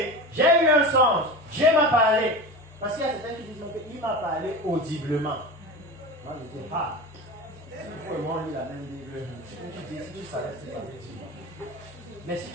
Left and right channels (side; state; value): both; normal; correlation 0.29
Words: j'ai eu un songe, Dieu m'a parlé, parce qu'il y a certains qui disent qu'il m'a parlé audiblement. Moi je dis, ah, si vous et moi on lit la même Bible, si tu dis, si tu savais ce que ça veut dire. Mais si